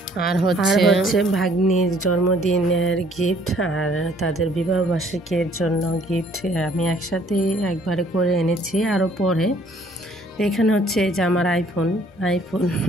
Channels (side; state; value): both; normal; correlation 0.60